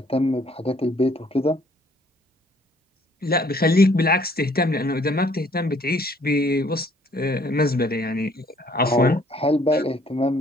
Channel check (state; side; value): normal; both; correlation 0.61